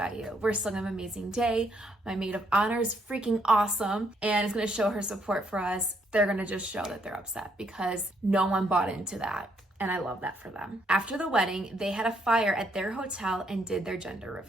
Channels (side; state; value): both; normal; correlation 0.72